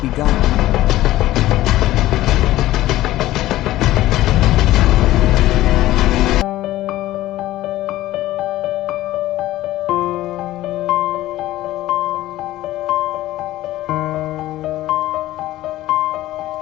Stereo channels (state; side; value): quieter; right; 15.6 dB